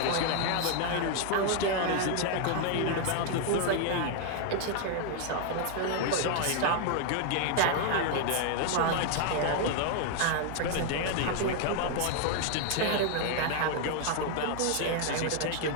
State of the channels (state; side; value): different; both; correlation 0.00